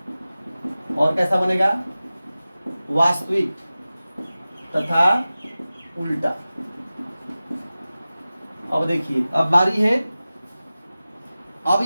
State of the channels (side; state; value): both; inverted; correlation -0.96